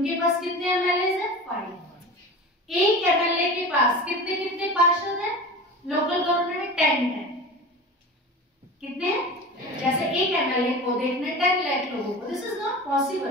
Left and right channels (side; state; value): both; normal; correlation 0.32